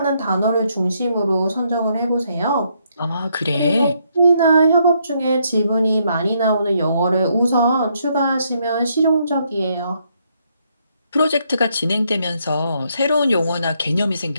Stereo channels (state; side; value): inverted; both; correlation -0.74